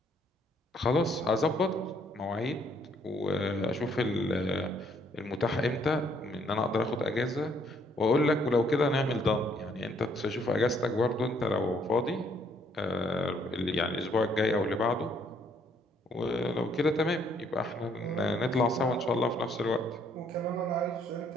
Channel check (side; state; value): both; normal; correlation 0.67